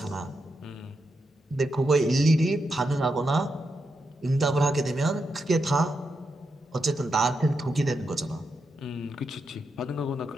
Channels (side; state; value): both; normal; correlation 0.85